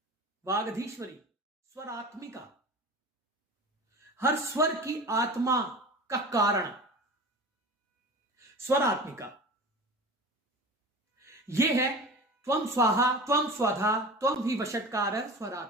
वागधीश्वरी, स्वरात्मिका, हर स्वर की आत्मा का कारण, स्वरात्मिका। यह है त्वं स्वाहा त्वं स्वधा त्वं ही वषट्कार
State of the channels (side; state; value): both; normal; correlation 0.35